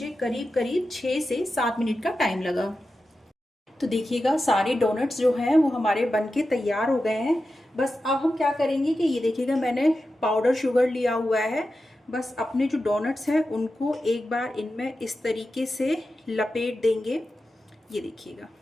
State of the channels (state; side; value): normal; both; correlation 0.91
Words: करीब करीब 6 से 7 मिनट का टाइम लगा। तो देखिएगा सारे डोनट्स जो हैं वो हमारे बनके तैयार हो गए हैं। बस अब हम क्या करेंगे कि ये देखिएगा मैंने पाउडर शुगर लिया हुआ है। बस अपने जो डोनट्स हैं उनको एक बार इनमें इस तरीके से लपेट देंगे, ये देखिएगा।